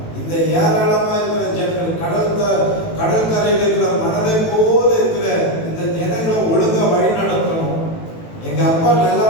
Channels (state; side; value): late; right; 18 ms